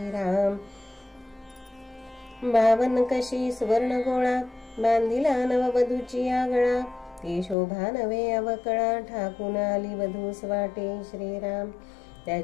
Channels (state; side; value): drops out; right; at 7.6 s